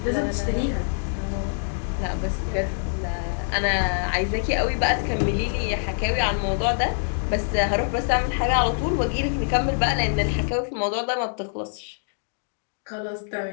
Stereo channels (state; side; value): silent; right; digital silence